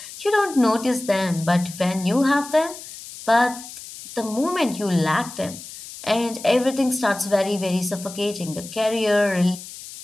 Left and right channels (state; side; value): noise; left; hiss, 14 dB below the sound